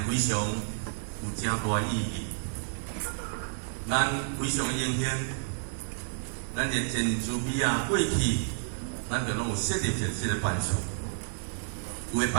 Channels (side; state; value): left; silent; 58 dB below the other